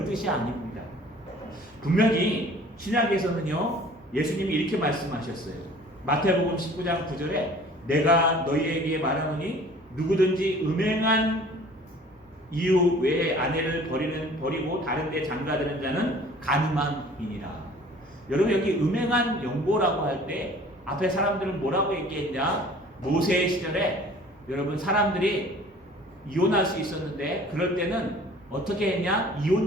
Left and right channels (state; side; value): normal; both; correlation 0.49